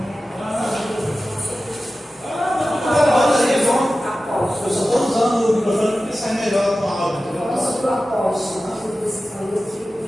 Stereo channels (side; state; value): both; normal; correlation 0.94